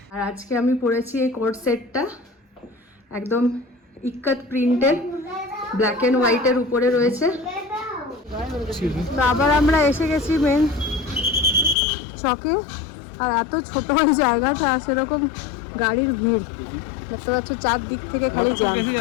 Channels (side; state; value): right; drops out; at 11.8 s